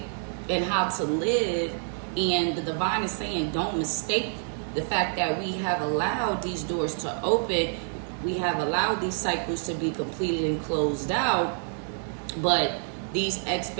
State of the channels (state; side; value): silent; left; 58 dB below the other